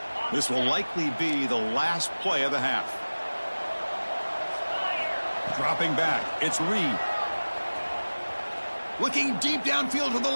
This will likely be the last play of the half. Dropping back, it's Reed. Looking deep downfield to the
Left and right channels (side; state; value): both; inverted; correlation -1.00